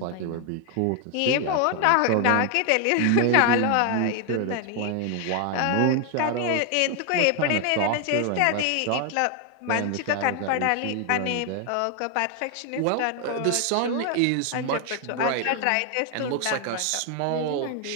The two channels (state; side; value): different; both; correlation 0.01